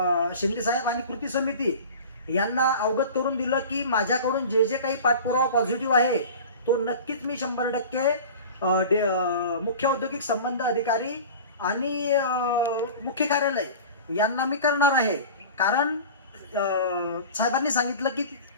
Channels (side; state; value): both; inverted; correlation -0.37